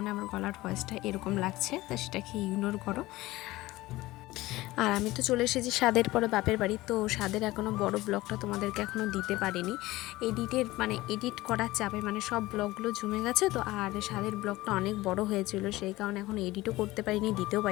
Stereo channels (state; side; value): quieter; right; 18.4 dB